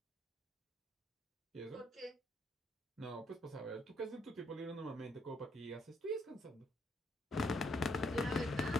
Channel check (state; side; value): normal; both; correlation 0.72